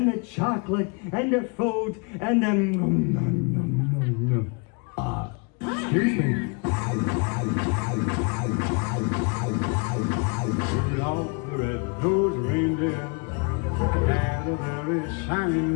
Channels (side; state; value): right; quieter; 33.3 dB